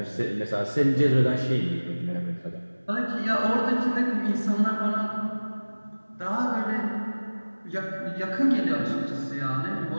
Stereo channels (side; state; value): both; inverted; correlation -1.00